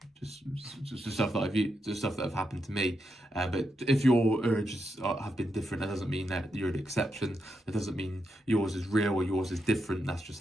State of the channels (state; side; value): normal; both; correlation 0.84